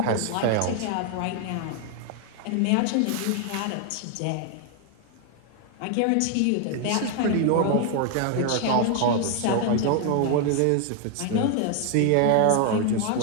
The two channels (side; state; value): both; different; correlation 0.00